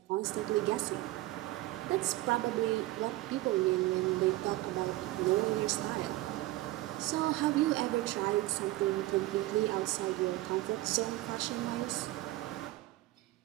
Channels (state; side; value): quieter; left; 17.9 dB